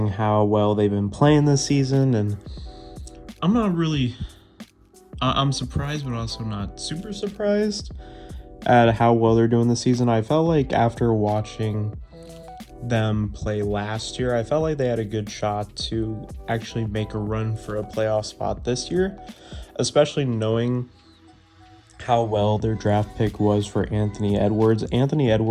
how well they've been playing this season. And I'm not really, I'm surprised, but also not super surprised at how well they're doing this season. I felt like after watching them play last year, I felt like they had a good shot to actually make a run for a playoff spot this year, especially knowing how well their draft pick was for Anthony Edwards. Anthony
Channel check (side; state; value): both; identical; correlation 1.00